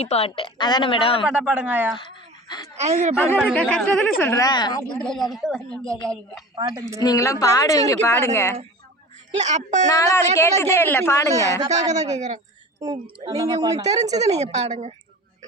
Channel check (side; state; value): both; normal; correlation 0.37